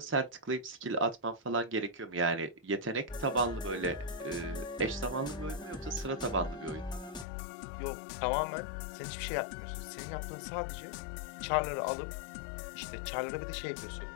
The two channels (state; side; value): drops out; right; at 7.2 s